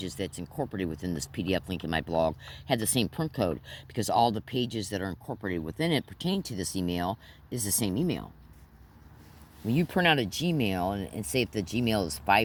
that's incorporated within this PDF link in my blog have the same print code, because all the pages that are incorporated within it pertaining to this email is the same email. When you print out a Gmail and say if the Gmail is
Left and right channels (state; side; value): identical; both; correlation 1.00